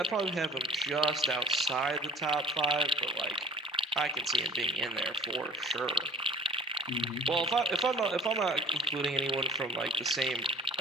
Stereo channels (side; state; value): both; normal; correlation 0.47